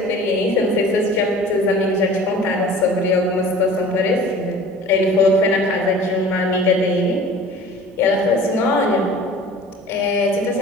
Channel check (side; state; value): both; normal; correlation 0.44